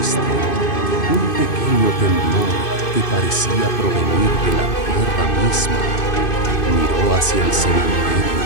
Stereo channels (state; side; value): late; right; 2.6 ms